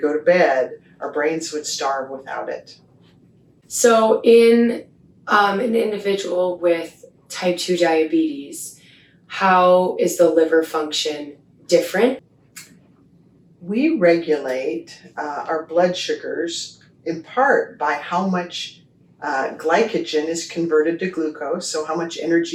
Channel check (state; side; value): identical; both; correlation 1.00